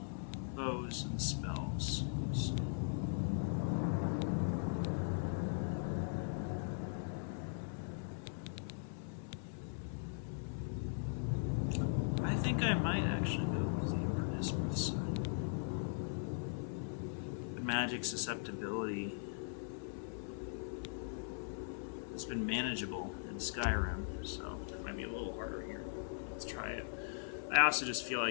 bows, and spells. So I think I might actually go with the Apprentice side. The magic susceptibility has been manageable in Skyrim, so it might be a little harder here. Let's try it. I also just feel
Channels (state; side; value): silent; right; 51 dB below the other